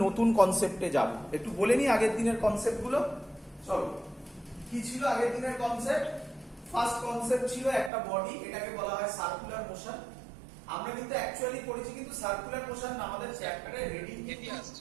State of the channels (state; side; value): drops out; left; at 7.9 s